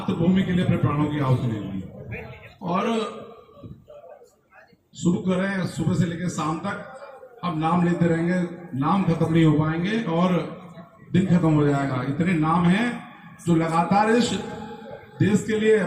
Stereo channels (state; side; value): identical; both; correlation 1.00